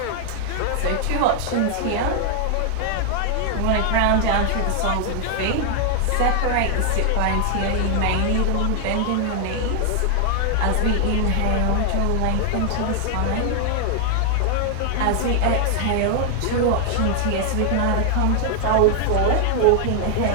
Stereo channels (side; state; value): both; different; correlation 0.00